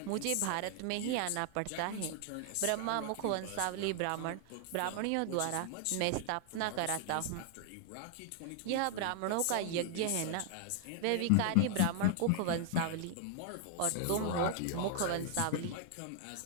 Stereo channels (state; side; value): different; both; correlation 0.00